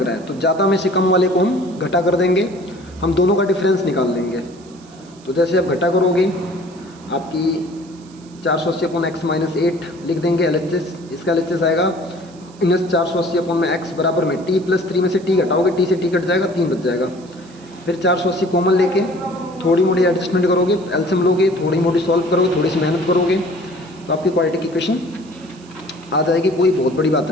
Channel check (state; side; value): noise; right; hiss, 26 dB below the sound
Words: रहा है, तो ज़्यादा में से कम वाले को हम घटा कर देंगे, हम दोनों का डिफरेंस निकाल लेंगे। तो जैसे आप घटा करोगे आपकी 480 अपॉन एक्स माइनस 8 लिख देंगे LHS, इसका LHS आएगा माइनस 480 अपॉन में x बराबर में t प्लस 3 में से t घटाओगे, t से t कट जाएगा, 3 बच जाएगा। फिर 480 कॉमन लेके थोड़ी मोड़ी एडजस्टमेंट करोगे, एलसीएम लोगे, थोड़ी मोड़ी सॉल्व करोगे, थोड़ी सी मेहनत करोगे तो आपकी क्वाड्रेटिक इक्वेशन आ जाएगी, कोई बहुत बड़ी बात